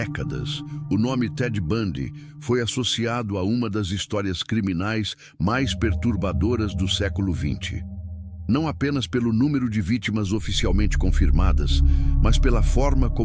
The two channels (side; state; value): both; identical; correlation 1.00